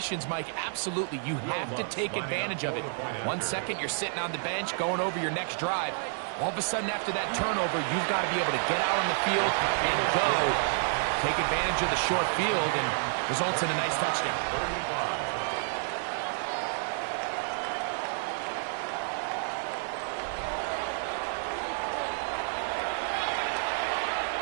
Mike, absolutely, you have to take advantage of it. 1 second, you're sitting on the bench, going over your next drive. All of a sudden, after that turnover, you've got to be able to get out on the field and go. Take advantage of the short field and results in a nice touchdown. 35.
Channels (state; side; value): silent; left; 55 dB below the other